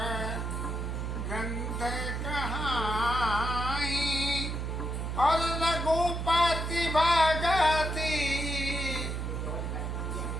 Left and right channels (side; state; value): right; noise; hum, 3 dB below the sound